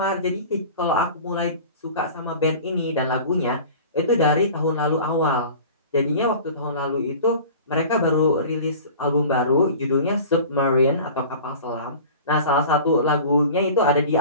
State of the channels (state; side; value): inverted; both; correlation -0.40